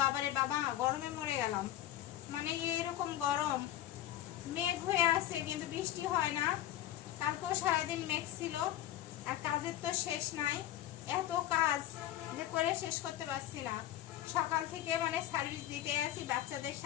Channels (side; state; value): right; quieter; 13.0 dB